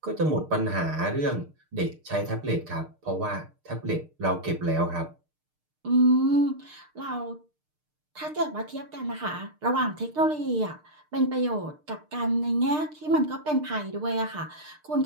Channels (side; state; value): left; late; 6.6 ms